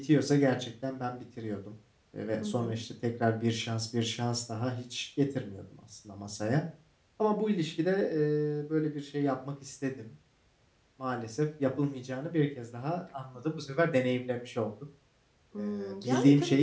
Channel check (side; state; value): both; identical; correlation 1.00